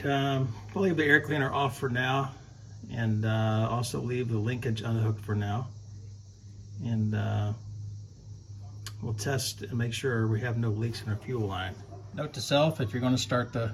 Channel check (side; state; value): both; identical; correlation 1.00